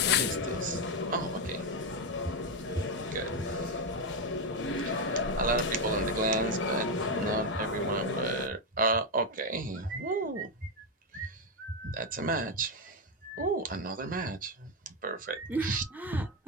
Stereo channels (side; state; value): both; normal; correlation 0.06